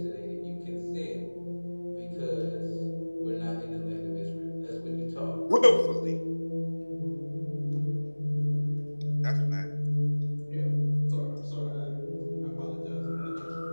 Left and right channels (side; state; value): both; inverted; correlation -1.00